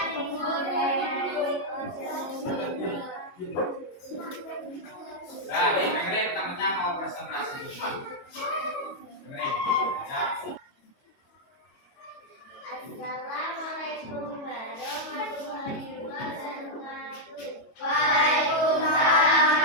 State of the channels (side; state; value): right; late; 22 ms